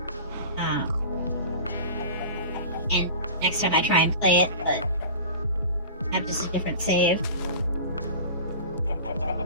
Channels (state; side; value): inverted; both; correlation -0.36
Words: And next time I try and play it, but have just a different save.